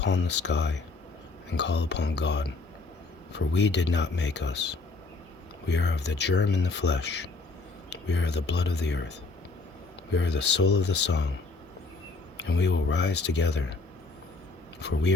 the sky, and call upon God. For we did not make us. We are of the germ in the flesh. We are the blood of the earth. We are the soul of the song, and we will rise together. For we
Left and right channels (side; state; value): right; quieter; 3.7 dB